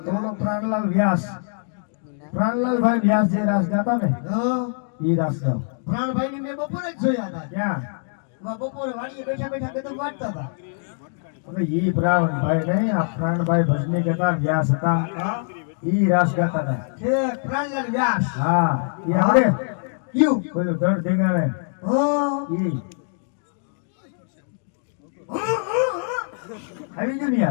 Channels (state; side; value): silent; right; digital silence